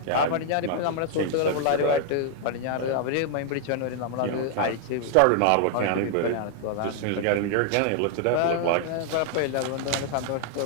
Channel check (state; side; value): different; both; correlation 0.00